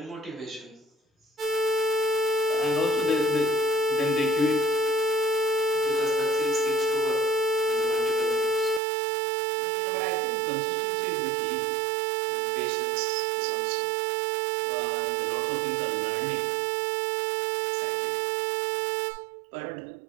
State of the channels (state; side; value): drops out; left; at 8.8 s